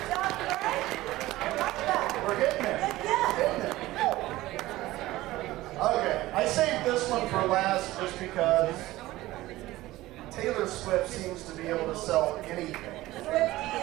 We're getting there. Okay, I saved this one for last just because Taylor Swift seems to be able to sell anything.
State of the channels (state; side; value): quieter; left; 17.3 dB